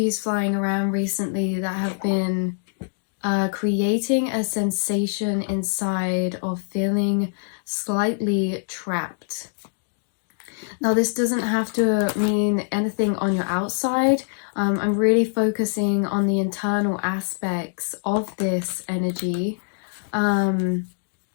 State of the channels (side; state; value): right; silent; digital silence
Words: flying around recently that have been creating a sensation inside of feeling slightly trapped. Now, this doesn't have to mean anything on your outside. I'm really focusing on the internal aspects of this energy,